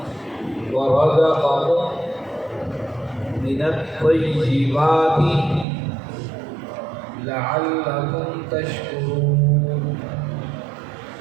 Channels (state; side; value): drops out; left; at 5.7 s